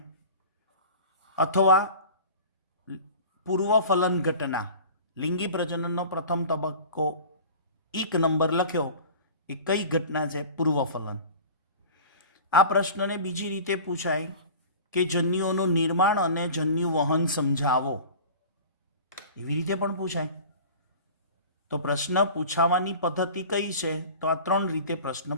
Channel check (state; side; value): inverted; both; correlation -0.39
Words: અથવા પૂર્વ ફલન ઘટના, લિંગી પ્રજનનનો પ્રથમ તબક્કો એક નંબર લખ્યો એ કઈ ઘટના છે? પૂર્વ ફલન। આ પ્રશ્નને બીજી રીતે પૂછાય કે જન્યુઓનું નિર્માણ અને જન્યુ વહન સમજાવો, એવી રીતે પણ પૂછાય। તો પ્રશ્ન પૂછાવાની પદ્ધતિ કઈ છે? તો આ ત્રણ રીતે પ્રશ્ન